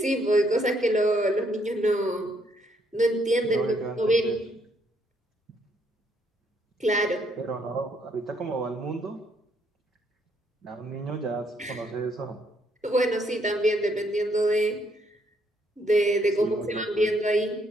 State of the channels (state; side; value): normal; both; correlation 0.71